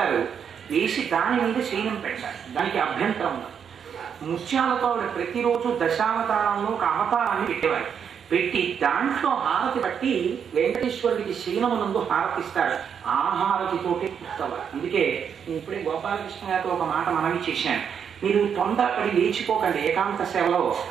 వేసి దాని మీద శయనం పెడతారు. దానికి అభ్యంతరం ఉంది. ముత్యాలతో ఆవిడ ప్రతిరోజు దశావతారంలో ఒక అవతారాన్ని పెట్టేవారు. పెట్టి దాంట్లో హారతి పట్టి వెంకటేశ్వరుడికి శయనమునందు హారతిస్తారు. ఆ హారతితోటి పుస్తవారు. అందుకే నేను ఇప్పుడే గోపాలకృష్ణ గారితో ఒక మాట మనవి చేశాను. మీరు తొందరపడి లేచిపోకండి. ఏకాంత సేవలో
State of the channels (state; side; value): quieter; left; 7.5 dB